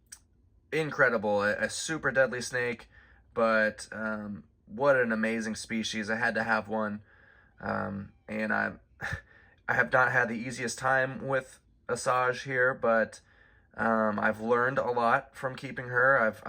incredible, a super deadly snake, but what an amazing species. I had to have one, and I have not had the easiest time with Asajj here, but I've learned a lot from keeping her.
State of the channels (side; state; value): both; identical; correlation 1.00